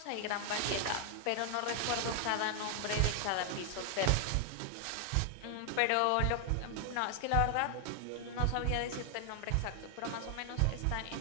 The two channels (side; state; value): both; different; correlation 0.00